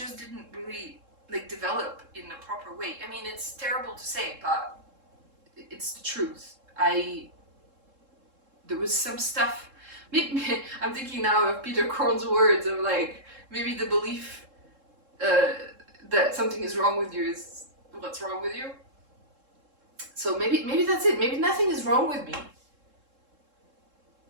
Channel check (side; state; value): left; late; 3.7 ms